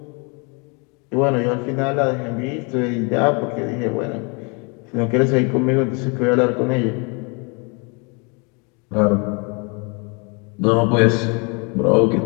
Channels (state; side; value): quieter; right; 32.7 dB